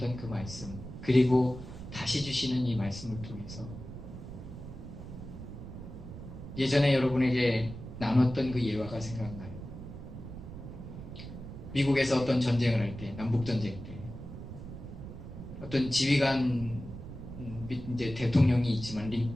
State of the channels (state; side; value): noise; right; rumble, 11 dB below the sound